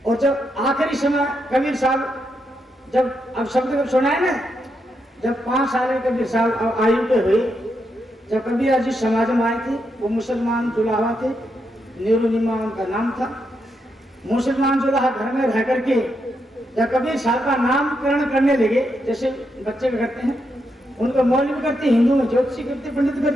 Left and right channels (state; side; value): normal; both; correlation 0.82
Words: और जब आखिरी समय कबीर साहब जब अब शब्द जब सुना है ना, जब 5 साल के कबीर साहब आयु के हुए, जब कबीर जी समाज में आए थे, वो मुसलमान जुलाहा थे, नीरुनिमा उनका नाम था। मुसलमान जुलाहा घर में रह करके जब कबीर साहब का नामकरण करने लगे, जैसे बच्चे करते हैं, उनको मौलवी करते, हिंदू में ज्योतिषी करते, पंडित